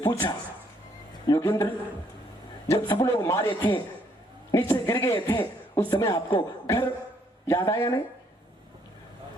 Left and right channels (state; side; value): normal; both; correlation 0.69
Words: पूछा, योगेंद्र जब सब लोग मारे थे, नीचे गिर गए थे, उस समय आपको घर याद आया नहीं?